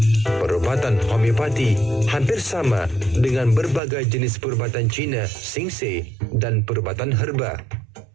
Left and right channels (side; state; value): left; drops out; at 3.8 s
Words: Perubatan homeopati hampir sama dengan berbagai jenis perubatan Cina, Singse dan perubatan herba.